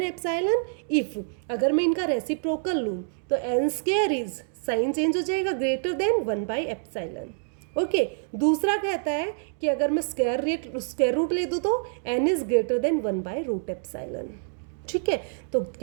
epsilon if, अगर मैं इनका रेसिप्रोकल लूँ तो n² इज, साइन चेंज हो जाएगा, ग्रेटर देन 1/एप्सिलॉन, ओके। दूसरा कहता है कि अगर मैं स्क्वायर रूट ले दूँ तो n इज ग्रेटर देन 1/√एप्सिलॉन, ठीक है, तो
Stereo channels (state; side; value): silent; left; digital silence